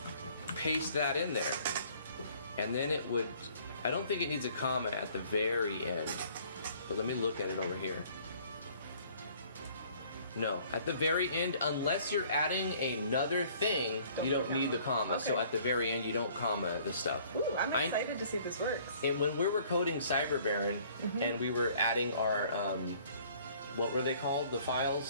paste that in there. And then it would, I don't think it needs a comma at the very end. But let me look at it over here. No, at the very end, unless you're adding another thing, you don't need the comma. So Okay. at the very end, you don't comma the stuff. Ooh, I'm excited to see if this works. And when we were coding Cyber Baron, Mm-hmm. and we were adding our, what were they called? The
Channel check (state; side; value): inverted; both; correlation -0.56